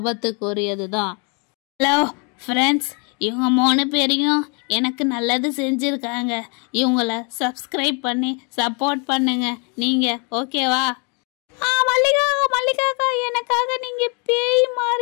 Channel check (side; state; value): right; quieter; 34.9 dB